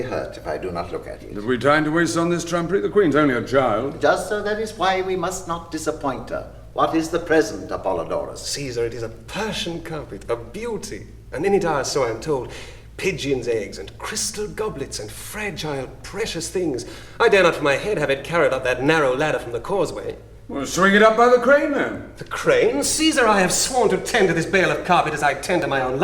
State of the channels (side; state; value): both; identical; correlation 1.00